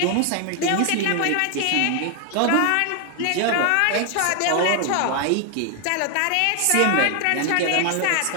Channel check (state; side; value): different; both; correlation 0.00